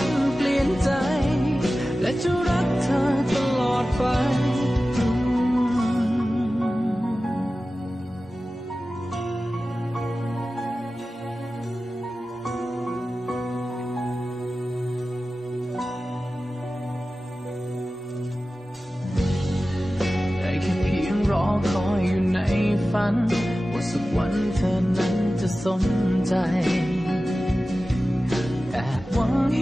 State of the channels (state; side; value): normal; both; correlation 0.95